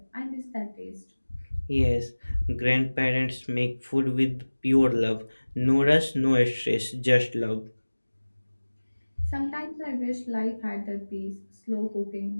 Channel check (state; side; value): inverted; both; correlation -1.00